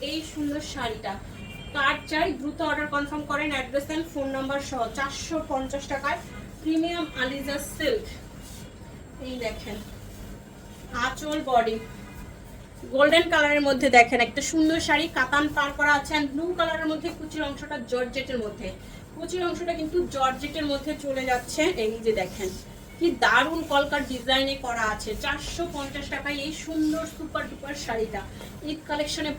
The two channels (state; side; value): identical; both; correlation 1.00